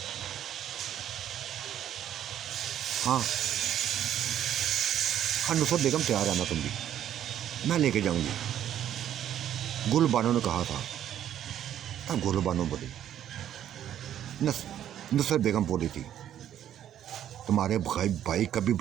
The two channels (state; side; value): quieter; left; 10.8 dB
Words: हाँ हाँ नुसरत बेगम तैयार है ना, तुम भी, मैं लेके जाऊंगी। गुल बानो ने कहा था। तब गुल बानो बोली, नुसरत बेगम बोली थी, तुम्हारे भाई कभी